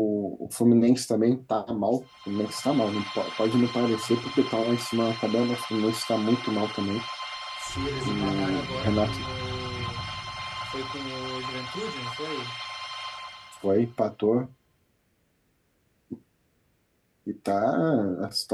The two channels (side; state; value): both; identical; correlation 1.00